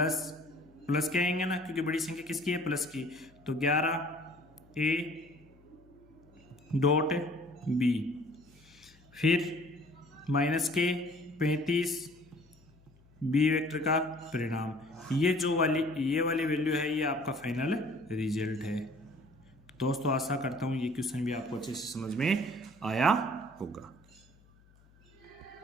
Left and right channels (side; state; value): left; noise; hum, 28 dB below the sound